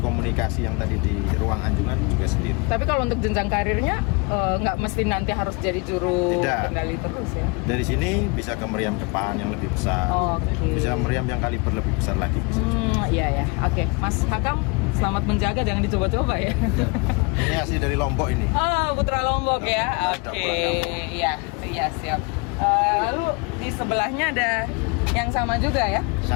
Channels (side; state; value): right; quieter; 29.4 dB